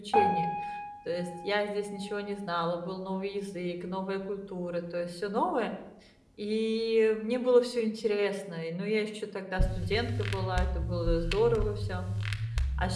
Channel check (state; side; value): identical; both; correlation 1.00